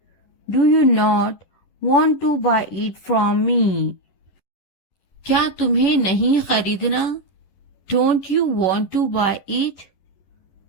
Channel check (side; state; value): right; late; 11 ms